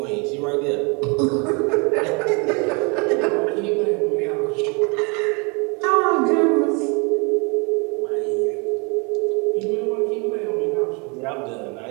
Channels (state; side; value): quieter; left; 32.0 dB